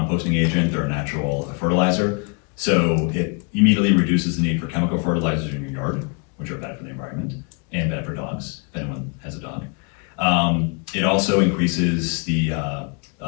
agent, they're a natural fertilizer. So it immediately reduces the need for chemical fertilizers in your yard, which are bad for the environment and bad for dogs, if anyone has a dog. It also increases the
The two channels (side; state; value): right; quieter; 35.0 dB